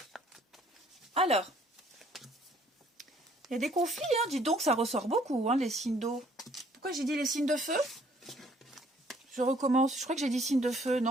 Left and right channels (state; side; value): normal; both; correlation 0.61